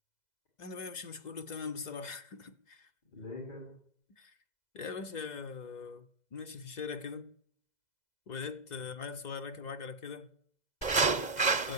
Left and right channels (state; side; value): late; right; 2.0 ms